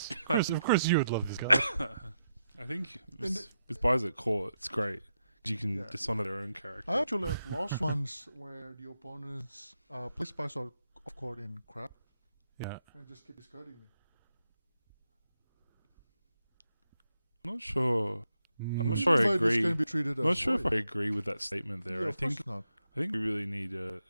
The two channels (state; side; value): inverted; both; correlation -0.84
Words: Of course you would love this card. I think with spies at court, it's great. You can dishonor their own character. I actually have lost ones where the opponents play spies off court in crap Yeah. and just keep discarding me. I'm not sure. I'm not Mm. sure I Fighters agree. can be treated I'm not as sure if void. I agree with that statement there. Yeah, I of course think not. we really need